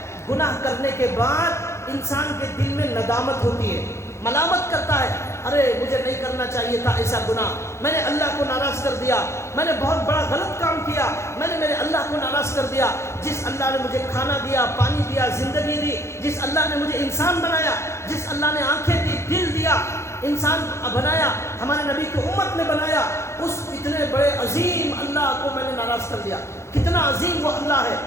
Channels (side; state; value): right; late; 0.13 ms